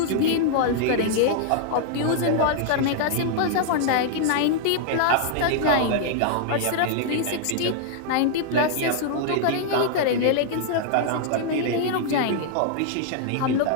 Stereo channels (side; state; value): both; different; correlation -0.01